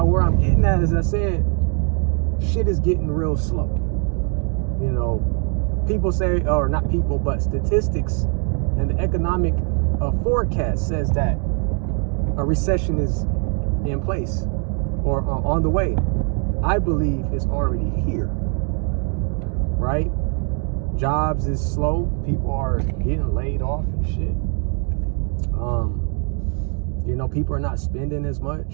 where I'm getting at, as I said, shit is getting real slow. You know, people say, or not people, but statistics and the economic forecast says that a recession is in place or on the way. I believe it's already here. Right? Jobs is slow. People are getting laid off and shit. You know, people are not spending as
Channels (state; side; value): quieter; left; 39.6 dB